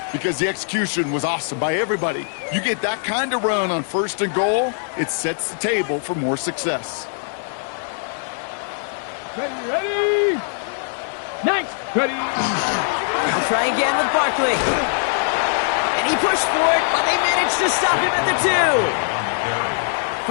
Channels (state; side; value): silent; right; digital silence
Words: because the execution was awesome by everybody. You get that kind of run on 1st and goal, it sets the table for more success. Ready. Nice. Ready. I'll try again with Barkley. And he pushed for it, but they managed to stop him at the 2.